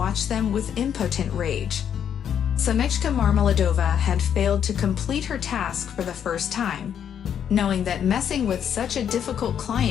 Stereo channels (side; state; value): right; quieter; 8.8 dB